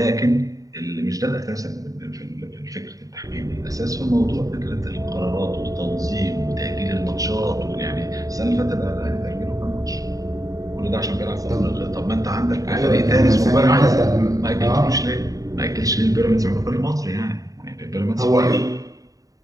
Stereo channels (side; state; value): left; late; 0.17 ms